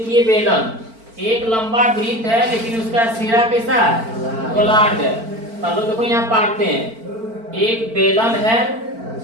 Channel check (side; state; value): left; late; 4.5 ms